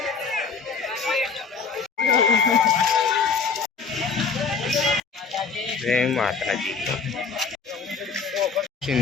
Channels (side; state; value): right; quieter; 5.2 dB